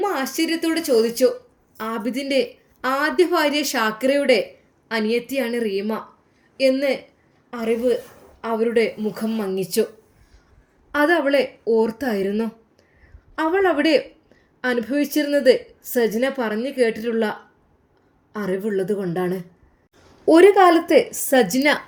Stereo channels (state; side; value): identical; both; correlation 1.00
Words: ആശ്ചര്യത്തോടെ ചോദിച്ചു. ആബിദിൻ്റെ ആദ്യ ഭാര്യ ഷാക്കിറയുടെ അനിയത്തിയാണ് റീമ എന്ന് അറിവ് അവരുടെ മുഖം മങ്ങിച്ചു. അതവളെ ഓർത്തായിരുന്നു. അവൾ അവിടെ അനുഭവിച്ചിരുന്നത് സജിന പറഞ്ഞു കേട്ടിട്ടുള്ള അറിവുള്ളത് കൊണ്ടാണ്. ഒരു കാലത്ത് സജിന